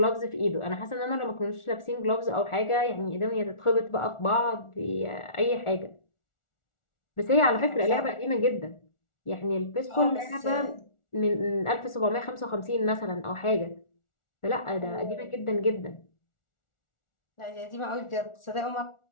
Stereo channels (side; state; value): right; late; 1.4 ms